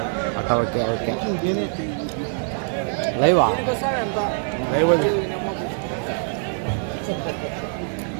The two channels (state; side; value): silent; left; 63 dB below the other